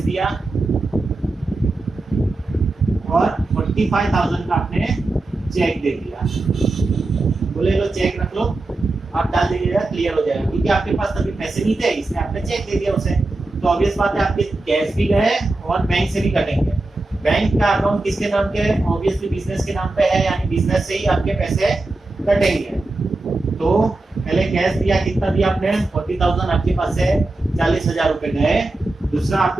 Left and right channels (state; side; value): quieter; left; 3.0 dB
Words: दिया और 45,000 का आपने चेक दे दिया, बोले लो चेक रख लो, आप डाल दीजिएगा क्लियर हो जाएगा, क्योंकि आपके पास तभी पैसे नहीं थे इसलिए आपने चेक दे दिया उसे। तो ऑब्वियस बात है आपके कैश भी गए और बैंक से भी कटेंगे। बैंक का अकाउंट किसके नाम के है, ऑब्वियसली बिजनेस के नाम पे है, यानी बिजनेस से ही आपके पैसे कटेंगे। तो पहले कैश दिया, कितना दिया आपने 40,000, आपके पास से 40,000 रुपए गए, दूसरा